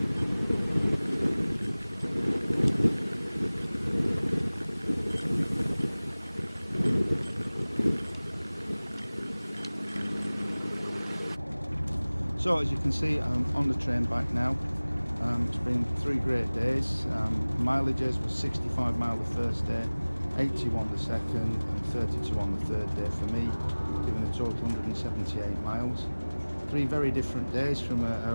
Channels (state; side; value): inverted; both; correlation -1.00